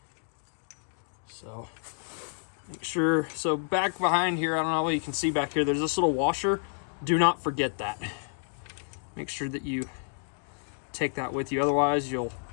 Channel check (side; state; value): right; silent; digital silence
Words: So make sure, so back behind here, I don't know what you can see back here, there's this little washer. Do not forget that. Make sure that you take that with you, otherwise you'll